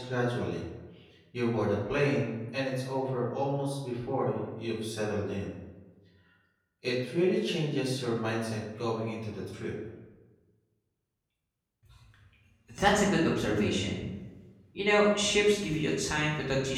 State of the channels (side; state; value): both; identical; correlation 1.00